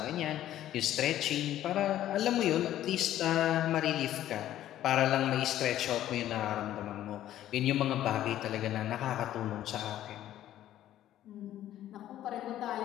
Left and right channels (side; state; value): right; quieter; 12.6 dB